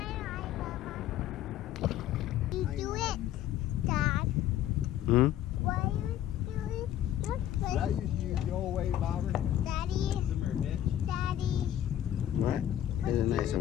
You do it, Dad. Hmm? Why are you doing it. Did I used to use the old way bobber? Daddy? Daddy? What? Here's a nicer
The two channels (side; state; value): right; quieter; 11.8 dB